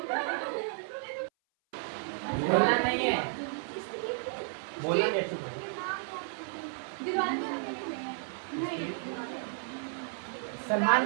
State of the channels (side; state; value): left; silent; 56 dB below the other